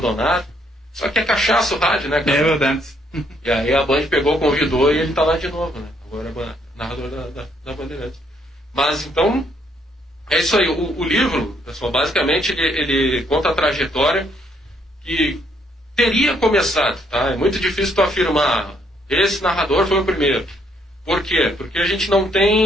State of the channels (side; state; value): both; normal; correlation 0.70